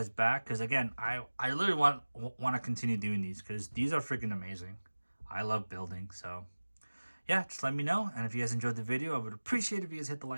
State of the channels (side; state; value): both; inverted; correlation -1.00